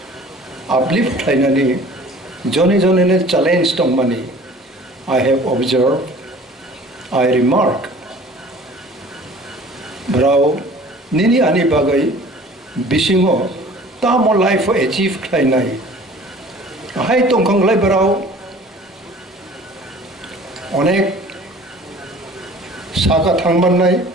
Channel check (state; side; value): normal; both; correlation 0.47